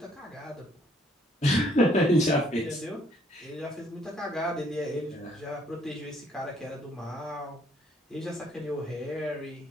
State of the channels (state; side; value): normal; both; correlation 0.65